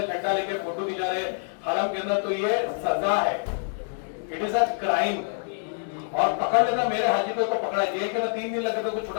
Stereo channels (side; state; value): right; silent; digital silence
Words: झंडा लेके फोटो खिंचा रहे हरम के अंदर, तो ये सजा है, इट इज अ क्राइम। और पकड़ लेना, मेरे हाजी को तो पकड़ा, जेल के ना 3 दिन लगे तो